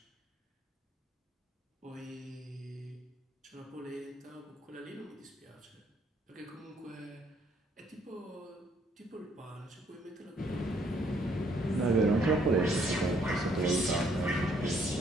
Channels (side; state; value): both; normal; correlation 0.67